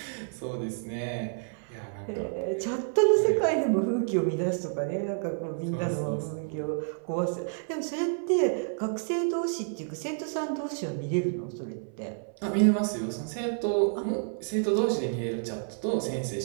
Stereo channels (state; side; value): silent; left; 58 dB below the other